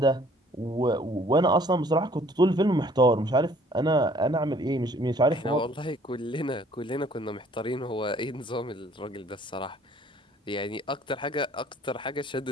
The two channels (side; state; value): both; normal; correlation 0.57